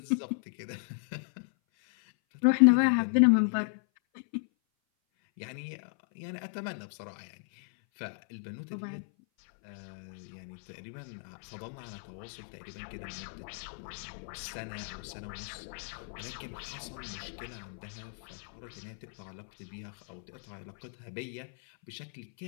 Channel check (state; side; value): silent; right; 55 dB below the other